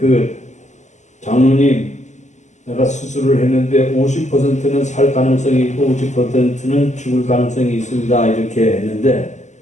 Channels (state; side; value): late; right; 0.34 ms